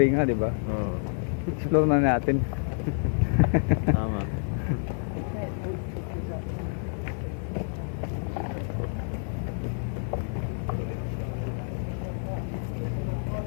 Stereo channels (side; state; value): right; silent; 59 dB below the other